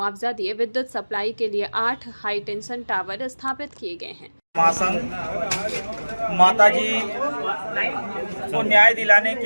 दिए विद्युत सप्लाई के लिए 8 हाईटेंशन टावर स्थापित किए गए हैं। महासंघ माताजी को न्याय दिलाने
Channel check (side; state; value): both; inverted; correlation -1.00